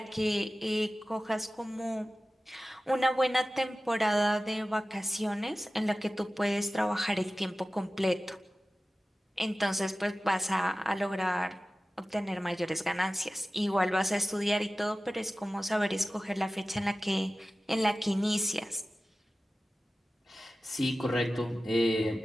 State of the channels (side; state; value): both; normal; correlation 0.95